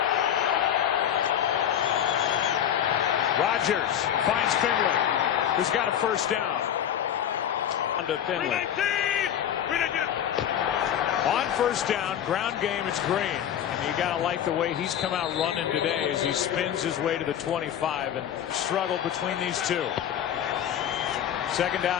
Rodgers finds Finley, who's got a 1st down. Under Finley. On 1st down, ground game, it's Green. And you got to like the way he's come out running today as he spins his way to the 25 and struggled between these 2. 2nd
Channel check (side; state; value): right; quieter; 9.9 dB